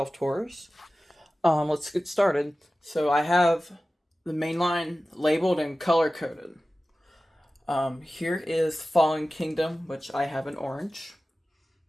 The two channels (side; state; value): both; normal; correlation 0.96